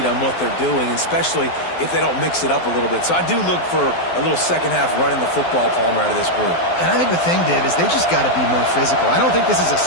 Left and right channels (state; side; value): late; right; 12 ms